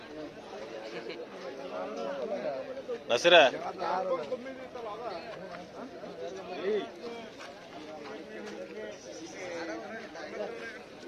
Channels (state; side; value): identical; both; correlation 1.00